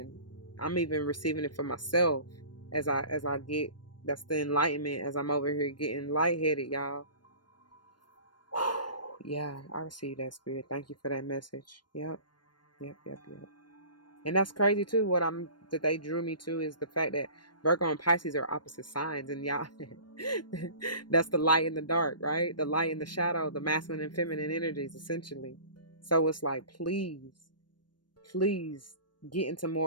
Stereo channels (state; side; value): late; right; 0.71 ms